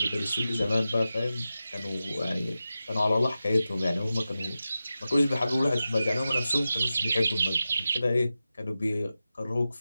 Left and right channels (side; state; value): both; inverted; correlation -0.93